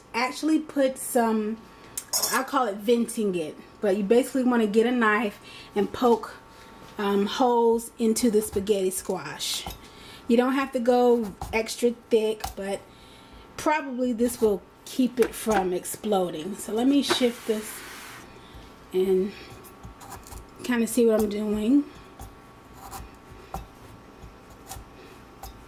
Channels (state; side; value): identical; both; correlation 1.00